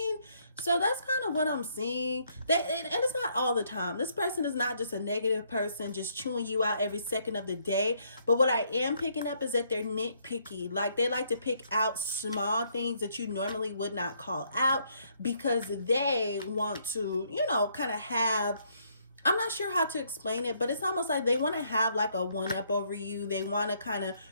So that's kind of what I'm seeing. And it's not all the time. This person is not just a negative person just chewing you out every second of the day. But what I am picking up is that they're nitpicky. Like, they like to pick out small things that you normally would not call out, because they want to, kind of have, I'm not sure how to explain it, but it's almost like they want to have like a one-up over you. They want to kind of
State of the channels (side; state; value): both; inverted; correlation -0.70